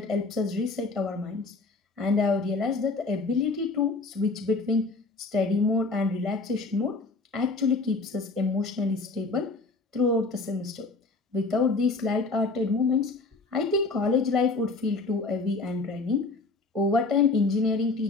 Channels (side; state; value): right; quieter; 3.6 dB